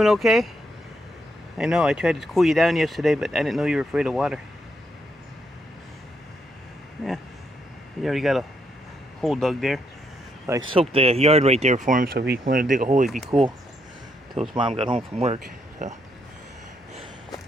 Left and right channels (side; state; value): both; normal; correlation 0.77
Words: okay? I know, I tried to cool you down yesterday, but I didn't know you were afraid of water. Yeah, you already got a hole dug there. So I soaked the yard right there for him, so if he wanted to dig a hole, he'd be cool until his mom got home from work.